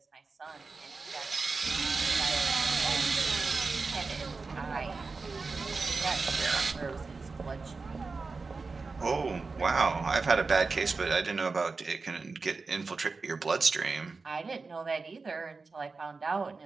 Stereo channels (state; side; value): quieter; left; 4.2 dB